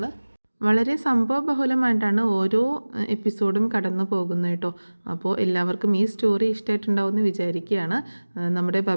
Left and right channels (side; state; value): both; inverted; correlation -1.00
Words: വളരെ സംഭവബഹുലമായിട്ടാണ് ഓരോ എപ്പിസോഡും കടന്നു പോകുന്നത് കേട്ടോ. അപ്പോൾ എല്ലാവർക്കും ഈ സ്റ്റോറി ഇഷ്ടമായിട്ടുണ്ടാവുമെന്ന് വിചാരിക്കുകയാണ്. നമ്മുടെ